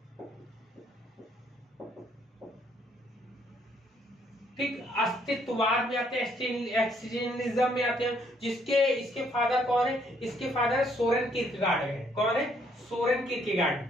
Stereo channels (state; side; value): normal; both; correlation 0.68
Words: ठीक, अस्तित्ववाद में आते हैं, एक्जिस्टेंशियलिज्म में आते हैं, इसके फादर कौन है? इसके फादर सोरेन किरकेगार्ड है। कौन है? सोरेन किरकेगार्ड,